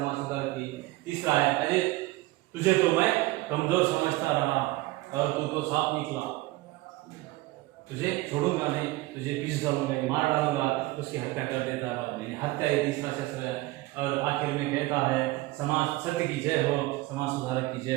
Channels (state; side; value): quieter; left; 19.5 dB